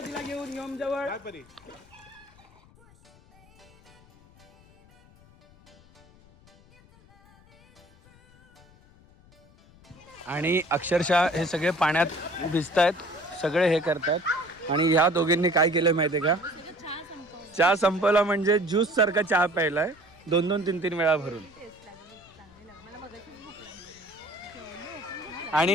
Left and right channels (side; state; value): left; noise; rumble, 27 dB below the sound